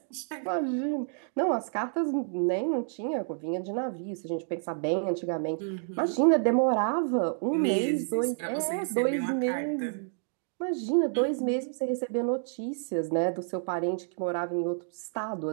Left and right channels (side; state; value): left; silent; digital silence